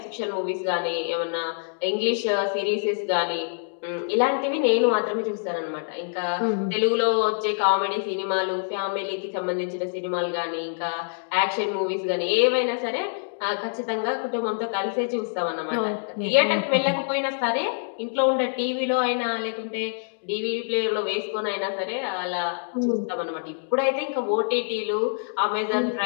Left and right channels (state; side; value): silent; right; digital silence